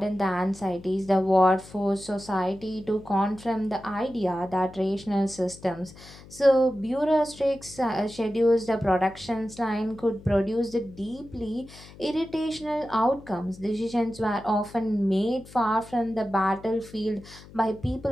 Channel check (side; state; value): left; noise; hum, 20 dB below the sound